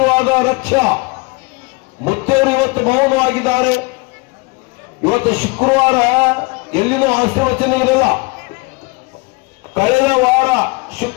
ರಕ್ಷ. ಮುತ್ತೆಯವರು ಇವತ್ತು ಮೌನವಾಗಿದ್ದಾರೆ. ಇವತ್ತು ಶುಕ್ರವಾರ ಎಲ್ಲಿನೂ ಆಶೀರ್ವಚನ ಇರಲ್ಲ. ಕಳೆದ ವಾರ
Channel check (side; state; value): right; quieter; 26.4 dB